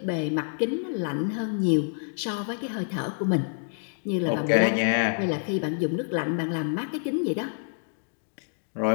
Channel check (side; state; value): right; silent; digital silence